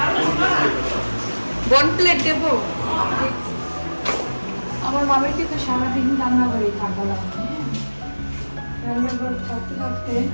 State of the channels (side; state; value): both; inverted; correlation -1.00